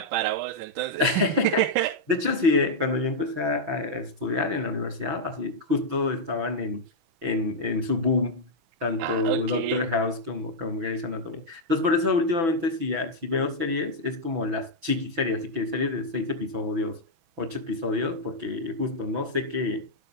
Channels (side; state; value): left; late; 6.1 ms